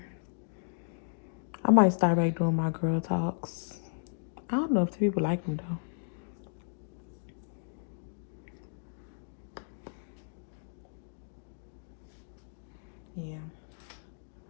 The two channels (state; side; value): silent; right; digital silence